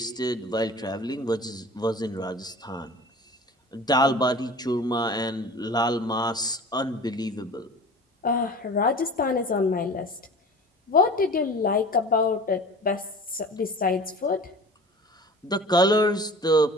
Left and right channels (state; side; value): normal; both; correlation 0.40